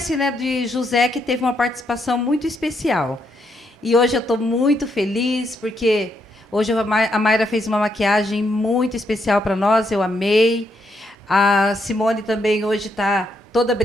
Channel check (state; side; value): normal; both; correlation 0.78